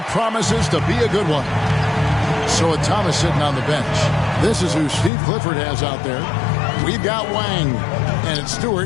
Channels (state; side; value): drops out; right; at 5.1 s